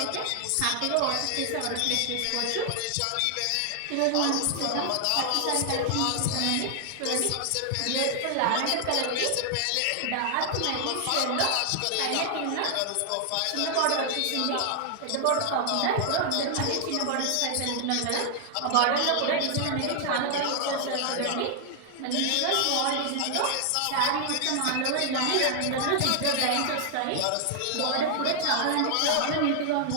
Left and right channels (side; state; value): both; different; correlation 0.00